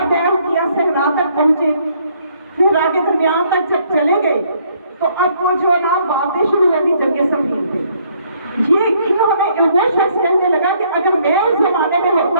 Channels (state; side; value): inverted; both; correlation -0.66